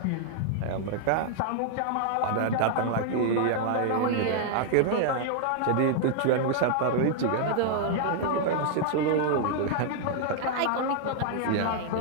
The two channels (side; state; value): both; different; correlation -0.01